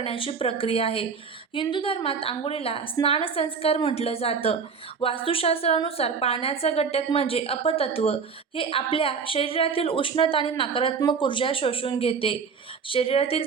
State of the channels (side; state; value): left; quieter; 5.7 dB